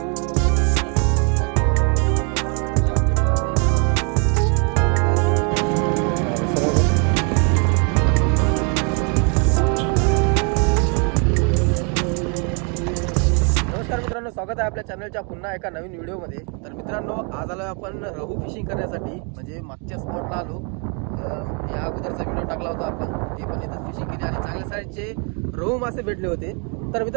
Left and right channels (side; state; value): left; quieter; 36.8 dB